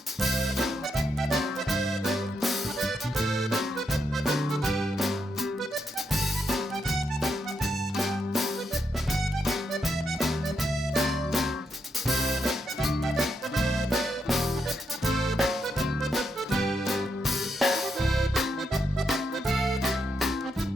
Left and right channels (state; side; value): normal; both; correlation 0.81